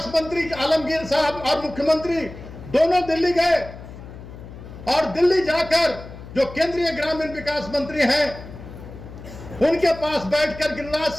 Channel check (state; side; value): noise; left; hum, 14 dB below the sound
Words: मंत्री आलमगीर साहब और मुख्यमंत्री दोनों दिल्ली गए और दिल्ली जाकर जो केंद्रीय ग्रामीण विकास मंत्री हैं उनके पास बैठकर, गिरिराज